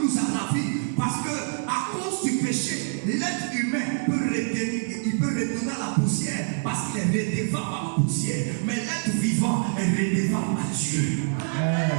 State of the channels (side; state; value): left; silent; digital silence